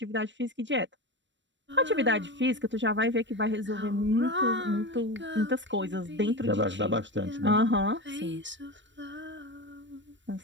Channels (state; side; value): late; left; 0.53 ms